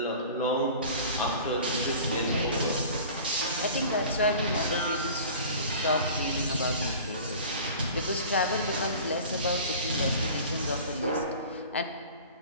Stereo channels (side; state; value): both; inverted; correlation -0.41